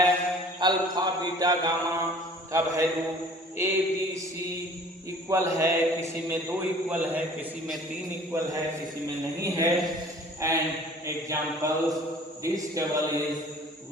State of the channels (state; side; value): normal; both; correlation 0.49